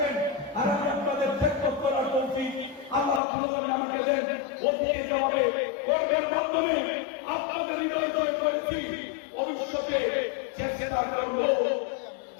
আর আমি আপনাদের খেদমত করার তৌফিক আল্লাহ রাব্বুল আলামিন আমাকে দেন। অতীতে যেভাবে কর্মের মাধ্যমে আপনাদের হৃদয় জয় করেছি, ভবিষ্যতে চেষ্টা করব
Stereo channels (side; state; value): right; drops out; at 3.2 s